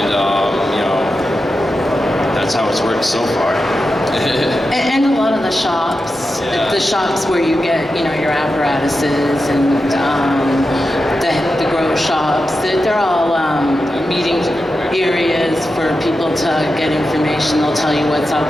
that's how it's worked so far. And a lot of the shops, Yeah. the shops where you get, your apparatuses and the grow shops, they're all meeting areas for people to get information. They'll tell you what's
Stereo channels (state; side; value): normal; both; correlation 0.90